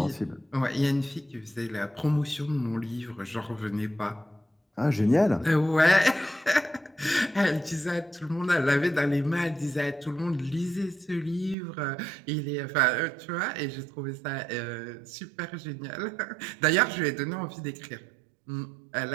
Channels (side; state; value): left; drops out; at 11.6 s